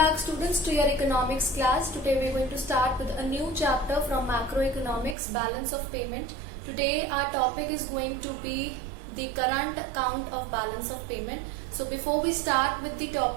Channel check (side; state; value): left; drops out; at 5.2 s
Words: students to your economics class. Today we are going to start with a new chapter from macroeconomics, balance of payment. Today our topic is going to be the current account of balance of payment. So before we start with the